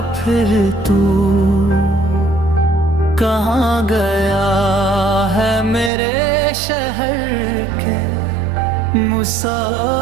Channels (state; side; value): drops out; left; at 5.9 s